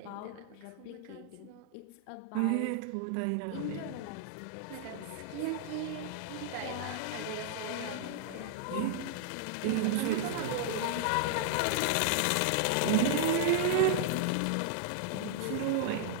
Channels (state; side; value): different; both; correlation -0.01